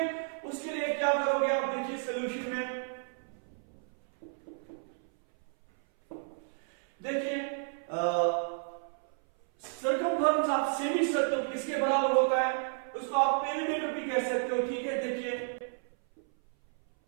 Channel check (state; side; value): silent; left; 57 dB below the other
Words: उसके लिए क्या करोगे आप, देखिए सॉल्यूशन में देखिए सर्कमफेरेंस ऑफ सेमी सर्कल किसके बराबर होता है, उसको आप पेरीमीटर भी कह सकते हो। ठीक है, देखिए